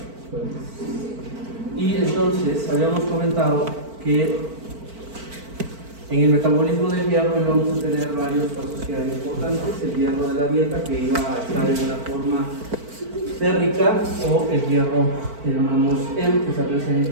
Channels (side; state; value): left; late; 4.5 ms